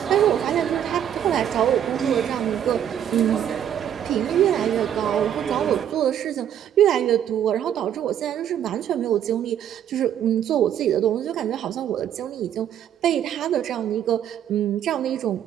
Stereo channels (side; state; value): left; quieter; 9.9 dB